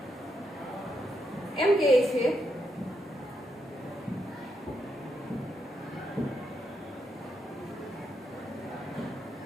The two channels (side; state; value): both; normal; correlation 0.81